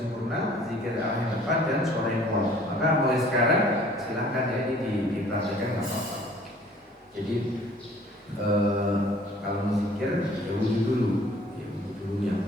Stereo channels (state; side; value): normal; both; correlation 0.53